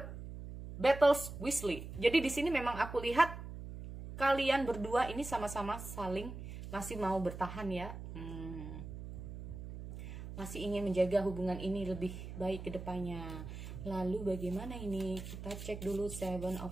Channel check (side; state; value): right; noise; hum, 9 dB below the sound